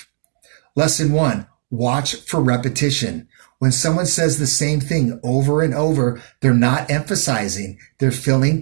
Lesson 1, watch for repetition. When someone says the same thing over and over, they're not emphasizing. They're filling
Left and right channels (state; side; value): silent; left; digital silence